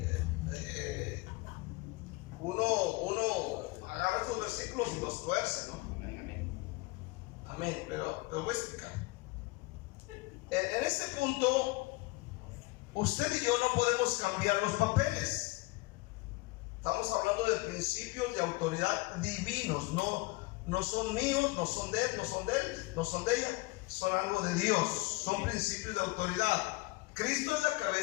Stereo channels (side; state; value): right; quieter; 23.5 dB